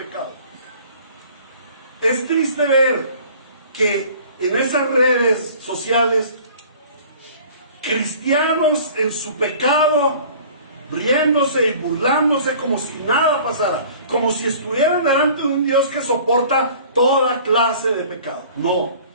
Es triste ver que en esas redes sociales, cristianos en su pecado, riéndose y burlándose como si nada pasara, como si estuvieran delante de un Dios que soporta toda clase de pecado. No,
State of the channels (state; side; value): inverted; both; correlation -0.48